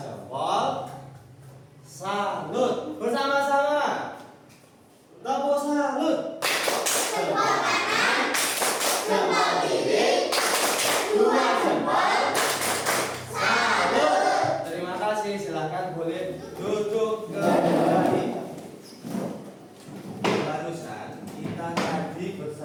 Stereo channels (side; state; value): both; identical; correlation 1.00